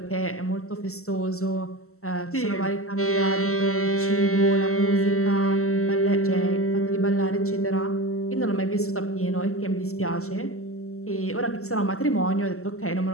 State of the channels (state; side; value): late; right; 0.63 ms